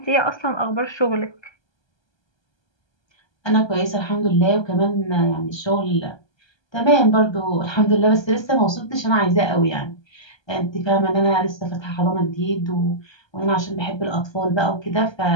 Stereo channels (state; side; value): late; right; 1.3 ms